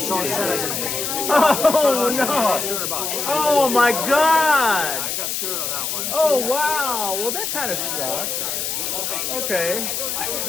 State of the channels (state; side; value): noise; left; hiss, 2 dB below the sound